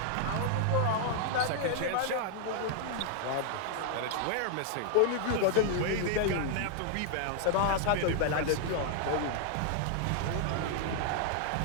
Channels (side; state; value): both; different; correlation -0.01